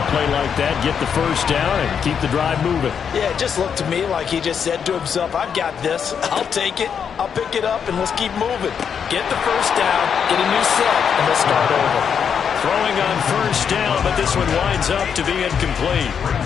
play like that. Get the first down and keep the drive moving. Yeah, it just looked to me like he just said to himself, I've got this. I'll take it. I'll pick it up, and let's keep moving. Get the first down, get a new set, and let's start over. Throwing on first down, but this one winds up to be incomplete.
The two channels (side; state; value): right; quieter; 7.3 dB